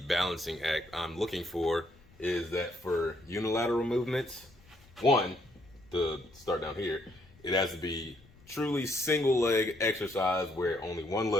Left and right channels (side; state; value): left; noise; rumble, 27 dB below the sound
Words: balancing act I'm looking for is that for unilateral movements, one, to start down here, it has to be truly single leg exercise where only one